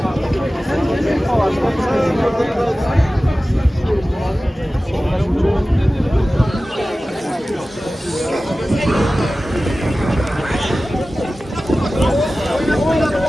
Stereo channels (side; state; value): both; normal; correlation 0.96